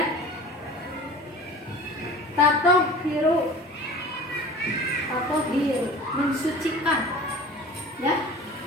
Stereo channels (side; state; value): both; normal; correlation 0.40